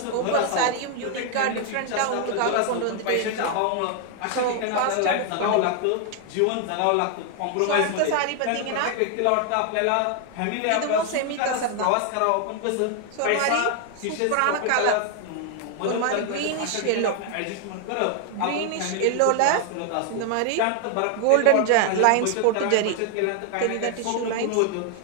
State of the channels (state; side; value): different; both; correlation 0.00